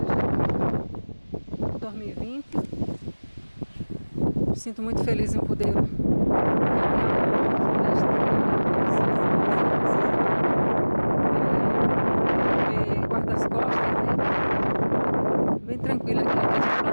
2020. Me sinto muito feliz em poder caminhar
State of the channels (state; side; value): inverted; both; correlation -1.00